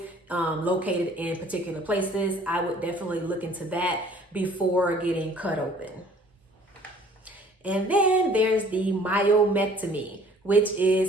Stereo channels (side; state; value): both; normal; correlation 0.54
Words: located in particular places. I would definitely look into that before getting cut open. And then there's the myomectomy, which